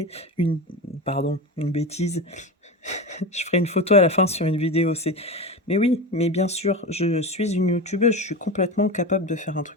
une bêtise. Je ferai une photo à la fin sur une vidéo. Mais oui, mais bien sûr, je suis une youtubeuse, je suis complètement capable de faire un truc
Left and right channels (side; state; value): both; normal; correlation 0.23